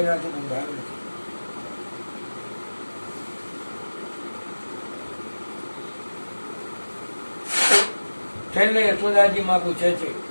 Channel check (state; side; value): inverted; both; correlation -1.00